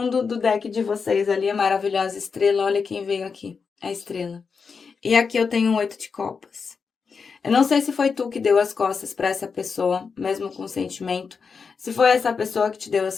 do deck de vocês ali, a maravilhosa estrela. Olha quem veio aqui, a estrela. E aqui eu tenho um 8 de copas. Eu não sei se foi tu que deu as costas para essa pessoa, mesmo com sentimento. Se foi essa pessoa que te deu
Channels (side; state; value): right; quieter; 5.5 dB